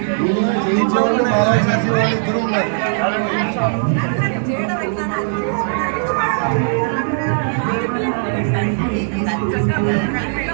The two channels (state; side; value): silent; left; 67 dB below the other